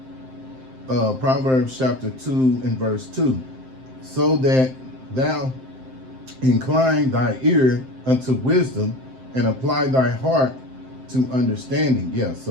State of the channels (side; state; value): left; late; 7.7 ms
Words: Proverbs chapter 2 and verse 2. So that thou incline thy ear unto wisdom and apply thy heart to understanding. Yeah,